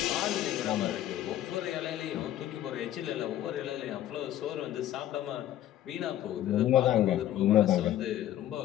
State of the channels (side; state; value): right; quieter; 12.6 dB